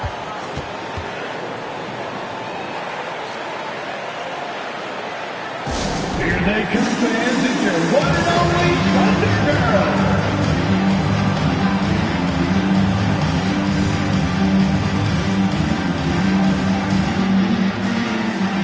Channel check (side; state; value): both; identical; correlation 1.00